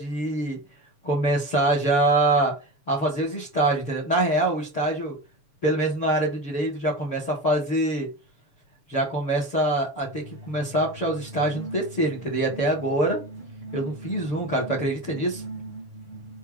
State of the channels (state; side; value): late; right; 7.0 ms